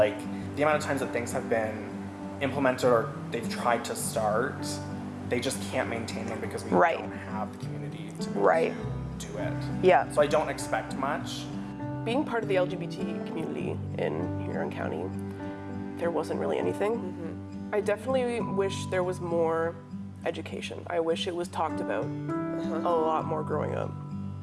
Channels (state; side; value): identical; both; correlation 1.00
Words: amount of times that things have been implemented or they've tried to start, they just can't maintain them because we don't have the community to be able to do it. Yeah. So I don't expect much. Being part of the LGBT community in Huron County, there wasn't really anything. I definitely wish there was more education. I wish it was talked about a lot more growing up.